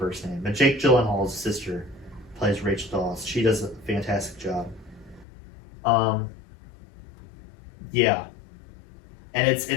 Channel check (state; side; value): drops out; right; at 5.2 s